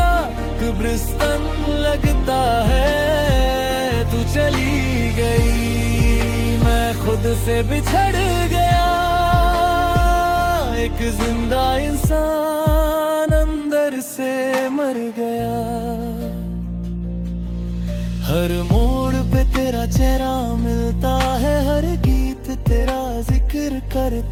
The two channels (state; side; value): identical; both; correlation 1.00